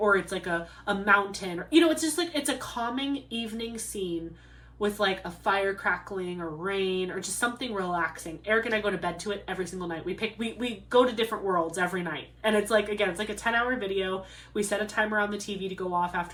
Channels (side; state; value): both; identical; correlation 1.00